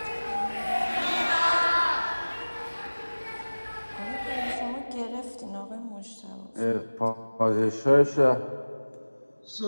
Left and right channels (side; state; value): both; inverted; correlation -1.00